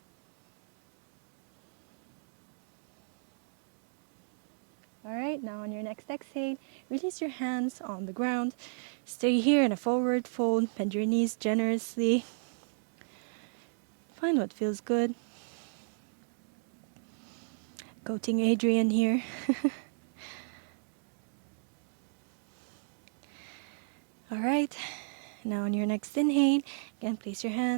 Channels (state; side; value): silent; left; 56 dB below the other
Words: All right, now on your next exhale, release your hands on the ground. Stay here in a forward fold. Bend your knees generously. Find what feels good. Coaching Adrian here. All right, now on your next inhale, again place your